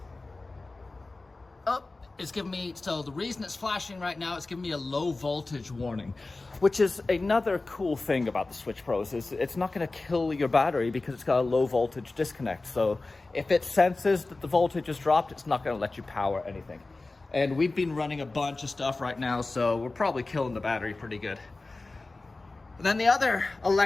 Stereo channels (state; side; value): quieter; right; 3.3 dB